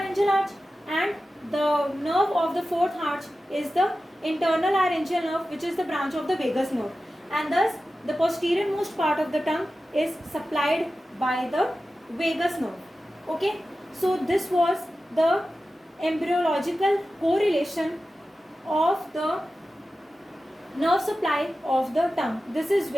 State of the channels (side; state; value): both; normal; correlation 0.94